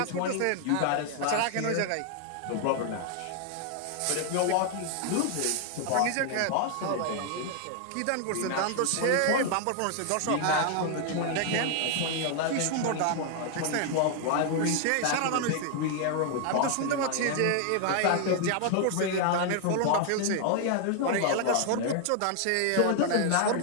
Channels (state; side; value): different; both; correlation 0.00